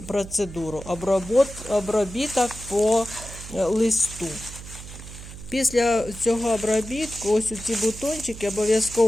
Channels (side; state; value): right; noise; hum, 13 dB below the sound